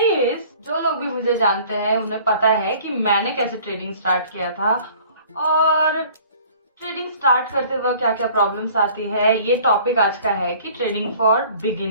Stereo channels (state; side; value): inverted; both; correlation -0.51